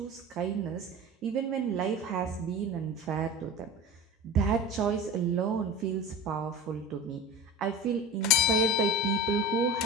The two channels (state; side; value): normal; both; correlation 0.31